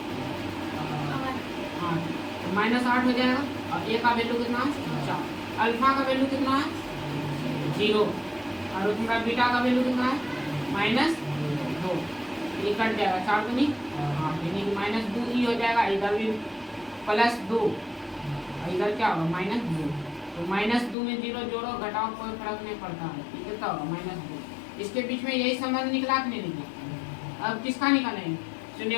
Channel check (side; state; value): right; drops out; at 21.0 s